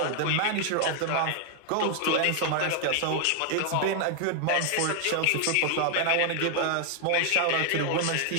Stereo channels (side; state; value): both; different; correlation 0.00